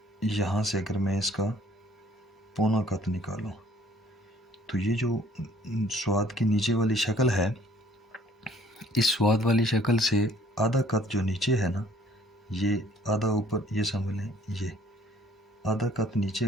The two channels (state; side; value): normal; both; correlation 0.57